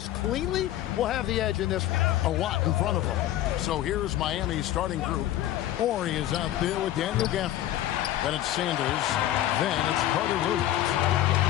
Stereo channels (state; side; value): quieter; right; 13.3 dB